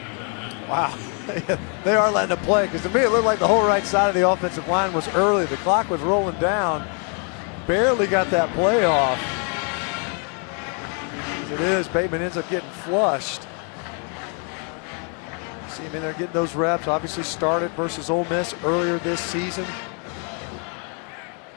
Wow, they are letting it play, because to me it looked like the whole right side of the offensive line was early. The clock was rolling down. Barely got that play off. As it is, Bateman ends up getting flushed. See him in there getting those reps. Obviously started versus Ole Miss earlier this season.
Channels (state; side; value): quieter; right; 39.5 dB